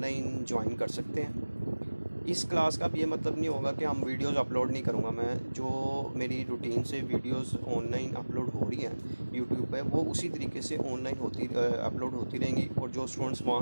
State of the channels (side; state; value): both; inverted; correlation -1.00